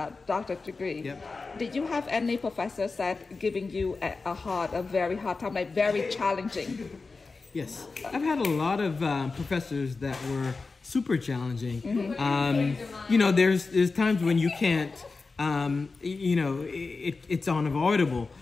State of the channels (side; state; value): right; quieter; 4.1 dB